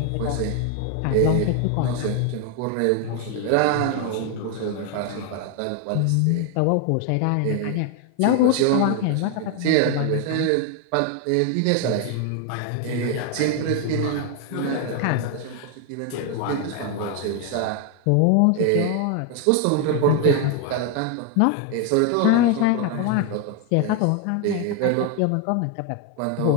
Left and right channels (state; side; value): different; both; correlation 0.01